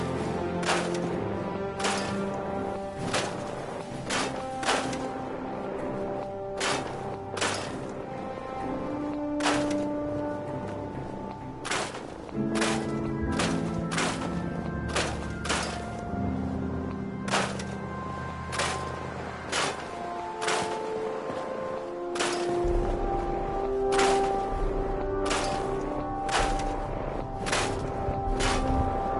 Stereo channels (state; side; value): identical; both; correlation 1.00